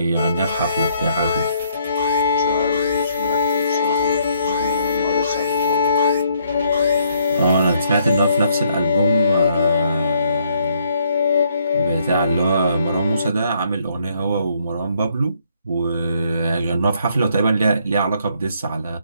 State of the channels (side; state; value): both; inverted; correlation -0.69